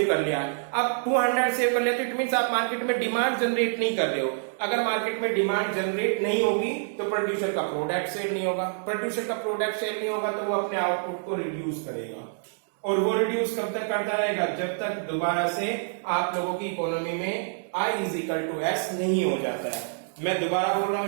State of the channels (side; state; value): left; silent; digital silence